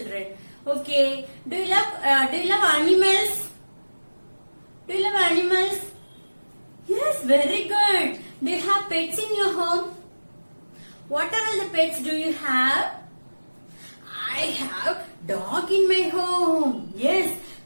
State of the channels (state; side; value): inverted; both; correlation -1.00